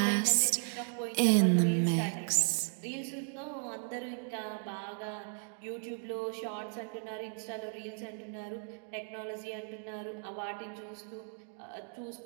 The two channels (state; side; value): silent; left; 54 dB below the other